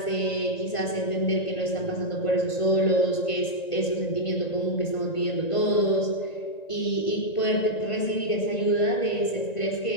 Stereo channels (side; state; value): right; late; 1.9 ms